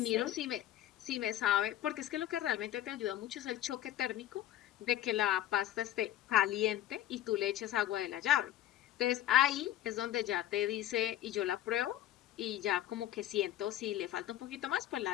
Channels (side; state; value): right; quieter; 13.1 dB